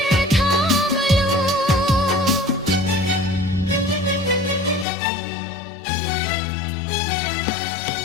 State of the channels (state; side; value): drops out; right; at 4.9 s